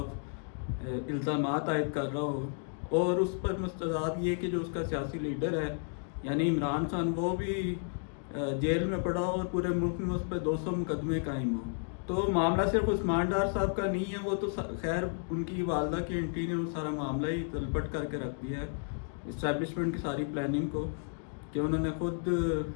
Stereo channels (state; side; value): silent; right; 56 dB below the other